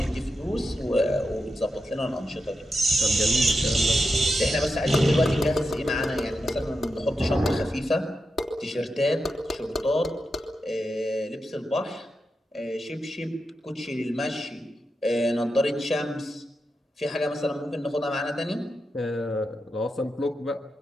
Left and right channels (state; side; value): normal; both; correlation 0.88